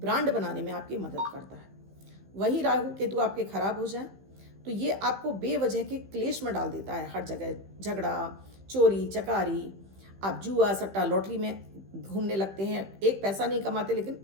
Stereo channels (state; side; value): late; left; 15 ms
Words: बनाने में आपकी मदद करता है। वही राहु केतु आपके खराब हो जाए तो ये आपको बेवजह के क्लेश में डाल देता है। हर जगह झगड़ा, चोरी चकारी, आप जुआ सट्टा लॉटरी में घूमने लगते हैं, एक पैसा नहीं कमाते लेकिन